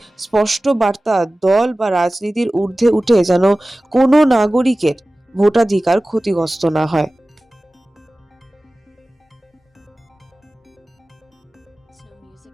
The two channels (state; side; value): normal; both; correlation 0.97